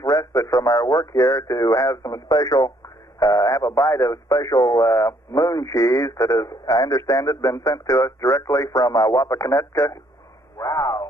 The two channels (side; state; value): both; normal; correlation 0.67